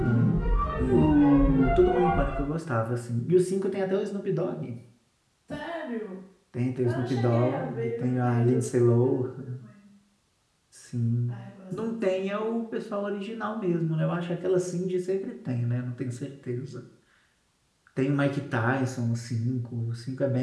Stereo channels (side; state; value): both; identical; correlation 1.00